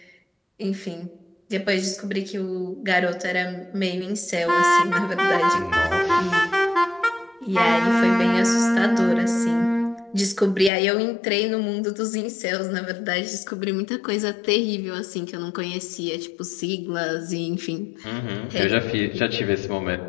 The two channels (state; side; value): drops out; right; at 10.7 s